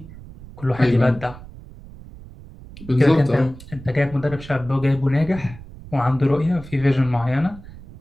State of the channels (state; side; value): noise; right; rumble, 17 dB below the sound